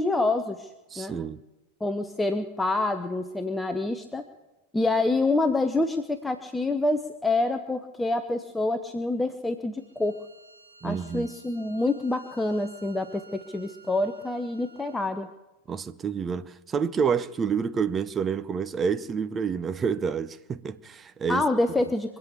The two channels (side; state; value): both; normal; correlation 0.77